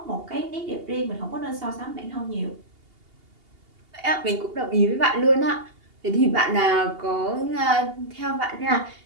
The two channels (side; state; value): left; late; 2.8 ms